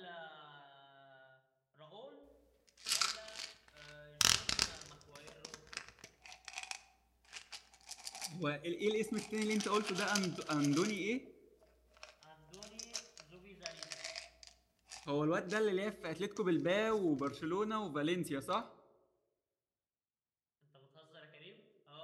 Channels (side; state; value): both; identical; correlation 1.00